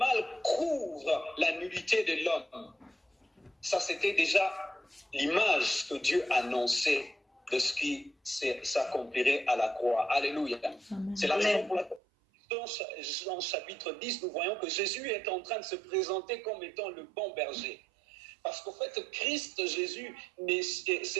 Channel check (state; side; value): drops out; left; at 12.0 s